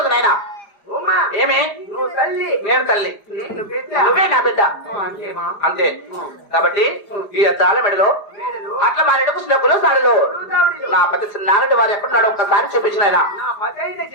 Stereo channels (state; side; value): late; right; 5.0 ms